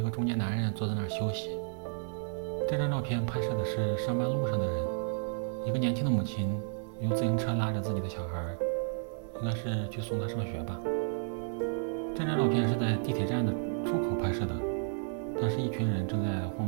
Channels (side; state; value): left; silent; 56 dB below the other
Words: 个中年男人坐在那儿休息。这张照片拍摄的是上班路上的人，一个年轻的母亲用自行车拉着自己的小孩，应该是去送他上学吧。这张照片是在地铁站的出口拍摄的，当时一群人正在慌